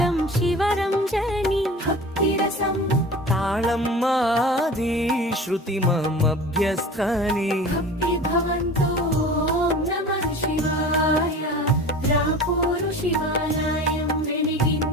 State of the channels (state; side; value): normal; both; correlation 0.38